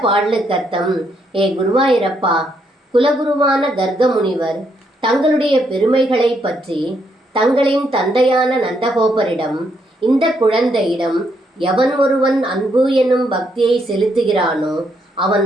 பாடலுக்கு அர்த்தம்: ஏ குருவாயிரப்பா, குலகுருவான கர்க முனிவர் தங்களுடைய பெருமைகளை பற்றி தங்களின் தந்தையான நந்தகோபரிடம், இந்த குழந்தையிடம் எவன் ஒருவன் அன்பு என்னும் பக்தியை செலுத்துகிறானோ அவன்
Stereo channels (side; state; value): both; normal; correlation 0.75